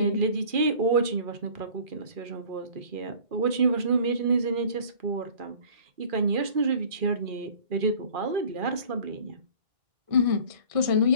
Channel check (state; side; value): late; left; 2.4 ms